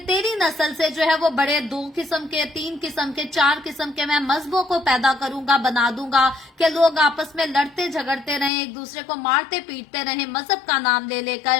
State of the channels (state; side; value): drops out; right; at 8.5 s